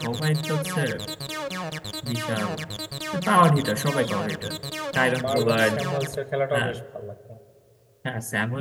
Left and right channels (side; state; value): both; identical; correlation 1.00